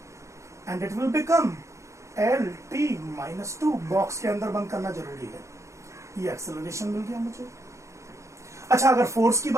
and it will become L T minus two. Box के अंदर बंद करना जरूरी है। ये एक्सेलरेशन मिल गया मुझे। अच्छा, अगर फोर्स की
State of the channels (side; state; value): left; late; 0.14 ms